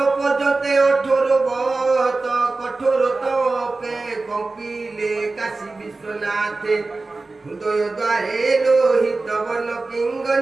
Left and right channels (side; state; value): left; quieter; 3.5 dB